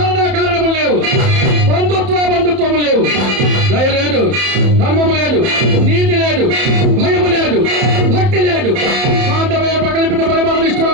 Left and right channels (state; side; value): late; left; 31 ms